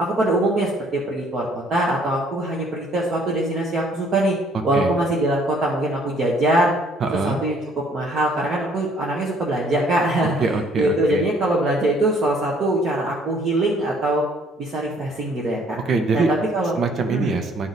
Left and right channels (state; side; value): normal; both; correlation 0.61